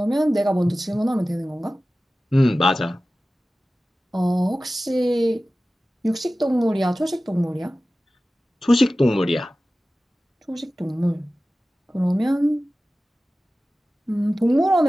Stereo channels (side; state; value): both; normal; correlation 0.96